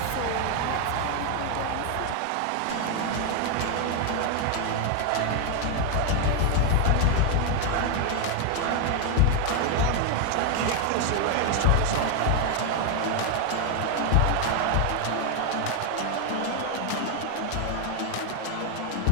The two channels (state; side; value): different; both; correlation 0.00